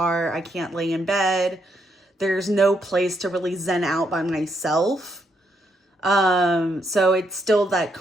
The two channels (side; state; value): both; normal; correlation 0.77